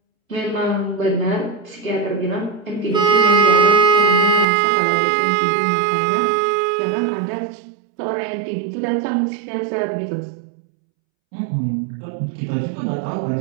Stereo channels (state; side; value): drops out; left; at 4.5 s